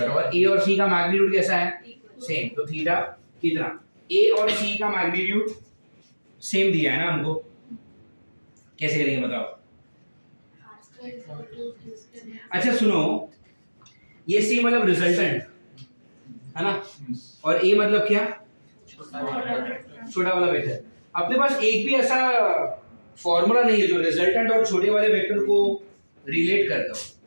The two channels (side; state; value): both; inverted; correlation -1.00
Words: और ए और सी का मैग्नीट्यूड कैसा है? सेम। तो थीटा कितना? ए और सी का मैग्नीट्यूड सेम दिया है ना हमको, कैसे करेंगे बताओ? अच्छा सुनो, ये सी मतलब रिजल्टेंट है ना, और ए मतलब क्या? छोटा वाला वेक्टर। अपने पास एक भी ऐसा फॉर्मूला नहीं है जो रिजल्टेंट और छोटे वाले वेक्टर को रिलेट करता हो,